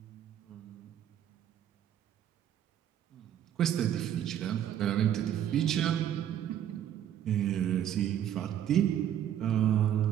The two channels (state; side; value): quieter; left; 10.5 dB